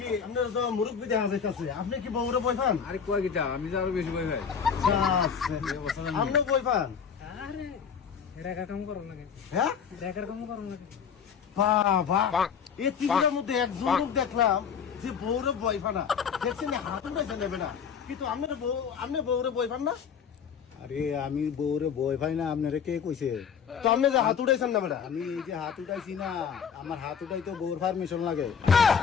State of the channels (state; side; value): quieter; right; 7.0 dB